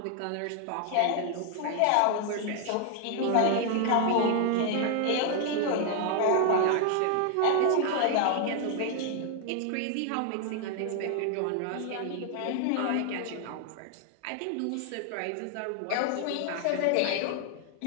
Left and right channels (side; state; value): both; different; correlation 0.00